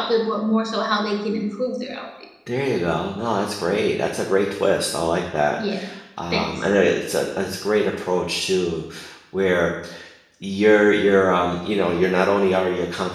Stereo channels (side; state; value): both; identical; correlation 1.00